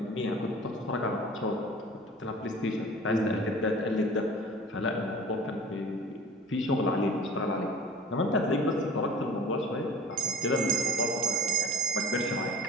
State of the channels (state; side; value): normal; both; correlation 0.43